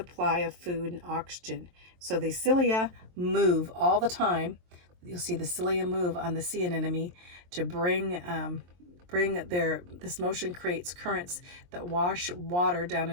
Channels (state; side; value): late; left; 23 ms